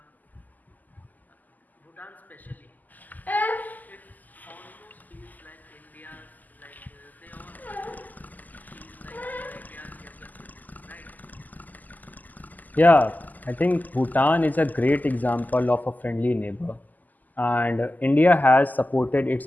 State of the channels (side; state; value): right; late; 0.082 ms